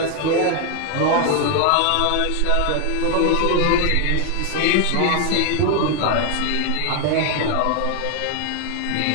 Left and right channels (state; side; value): different; both; correlation 0.01